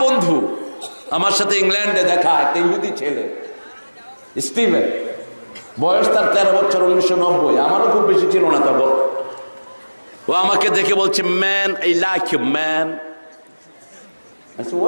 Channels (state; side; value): inverted; both; correlation -1.00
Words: বন্ধু, আমার সাথে ইংল্যান্ডে দেখা একটা ইহুদি ছেলে স্টিভেন, বয়স তার 13 বছর, 1990, আমারও খুব বেশি ছিল না তখন। ও আমাকে দেখে বলছে, man I like you man. I said,